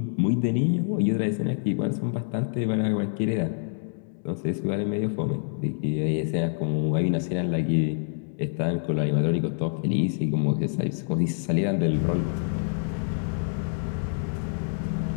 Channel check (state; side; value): silent; right; digital silence